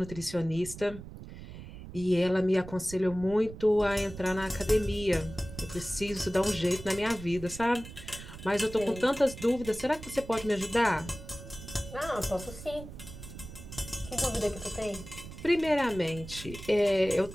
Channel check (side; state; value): right; noise; rumble, 13 dB below the sound